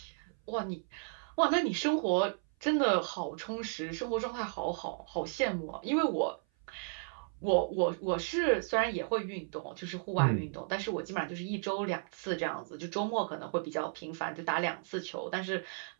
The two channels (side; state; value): left; silent; 55 dB below the other